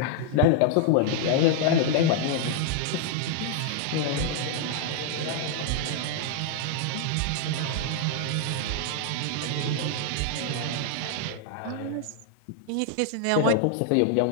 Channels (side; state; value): both; different; correlation 0.00